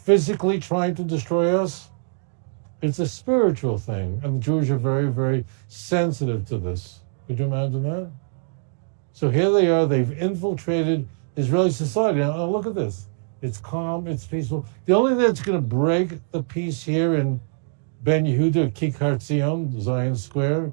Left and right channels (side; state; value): left; silent; digital silence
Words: trying to destroy us. It's a spiritual thing. And the Jews are very, very sensitive to this. Could you imagine that? So here they are. They've infiltrated Israeli society. Now look at this. It's calm. It's peaceful. The only thing that's going to break the peace here in Ben Yehuda, Kikar Zion, Zion Square,